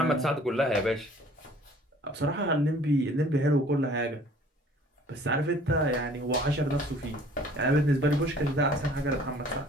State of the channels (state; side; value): normal; both; correlation 0.53